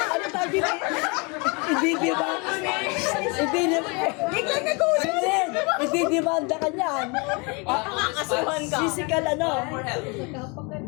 Ano tabi na? Ididimanda ka niyan. Kakasuhan ka. Physical ano? For help.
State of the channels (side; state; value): right; quieter; 30.6 dB